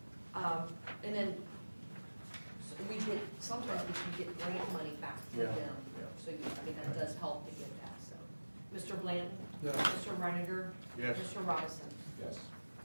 And then, so we get, sometimes we can get grant money back from Yeah, them. yeah. So, I mean, that does help to get that, so. Mr. Blanton? Yes. Mr. Reiniger? Yes. Mr. Robinson? Yes.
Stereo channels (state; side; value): inverted; both; correlation -1.00